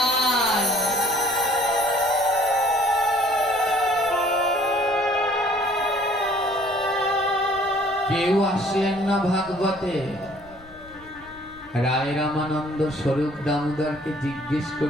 কেউ আসলেন না ভাগবতে। রায় রামানন্দ স্বরূপ দামোদরকে জিজ্ঞেস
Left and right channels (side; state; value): left; noise; rumble, 24 dB below the sound